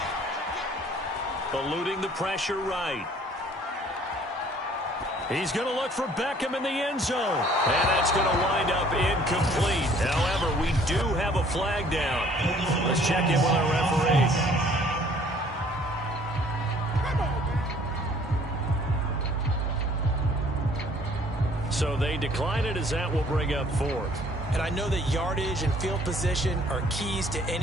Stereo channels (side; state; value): both; normal; correlation 0.57